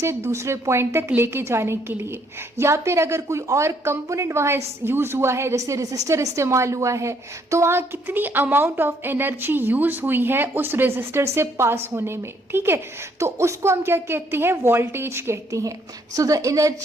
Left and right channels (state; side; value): normal; both; correlation 0.68